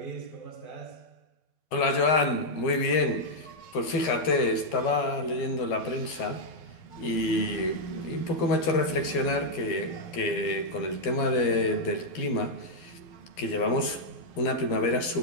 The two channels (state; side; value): late; right; 12 ms